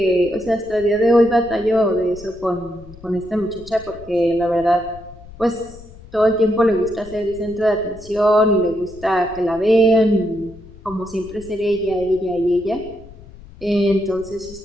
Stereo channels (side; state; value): left; noise; rumble, 19 dB below the sound